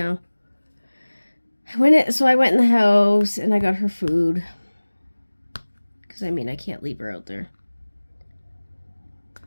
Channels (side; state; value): both; inverted; correlation -1.00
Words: So I went in the house and I got her food. Because, I can't leave her out there.